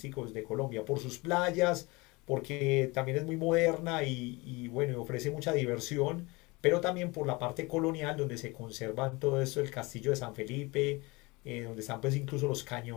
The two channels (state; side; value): quieter; right; 24.8 dB